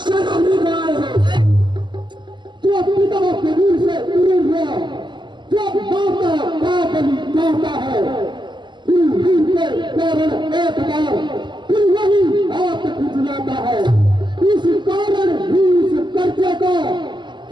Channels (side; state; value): left; late; 0.22 ms